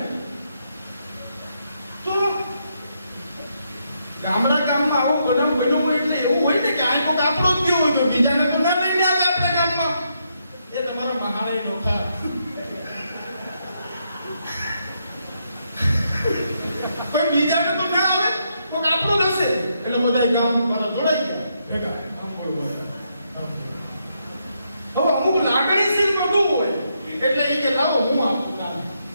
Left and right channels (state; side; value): inverted; both; correlation -0.78